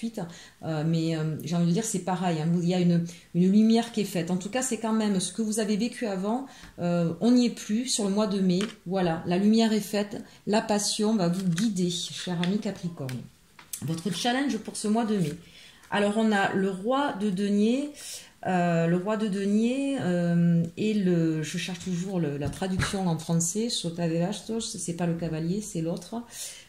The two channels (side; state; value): both; identical; correlation 1.00